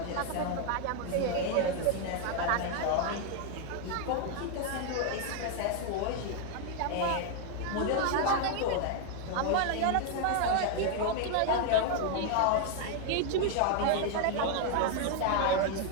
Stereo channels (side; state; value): both; different; correlation 0.01